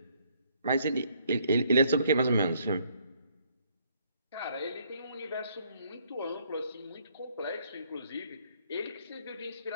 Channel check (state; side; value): inverted; both; correlation -0.67